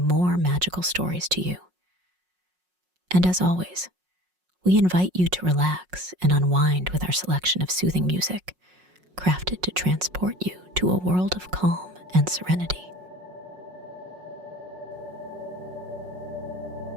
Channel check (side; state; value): left; late; 5.5 ms